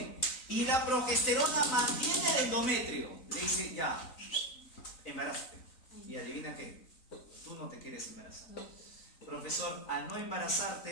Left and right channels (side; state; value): right; late; 3.9 ms